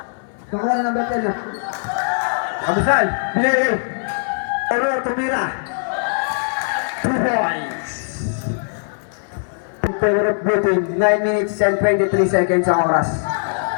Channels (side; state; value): right; silent; 66 dB below the other